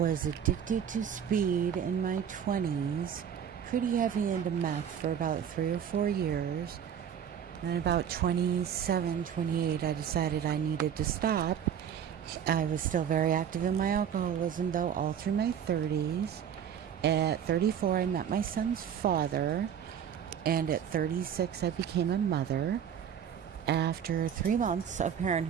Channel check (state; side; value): quieter; left; 8.6 dB